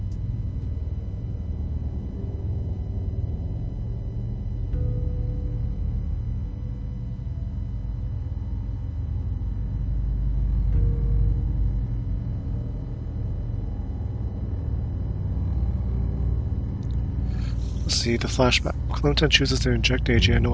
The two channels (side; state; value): both; identical; correlation 1.00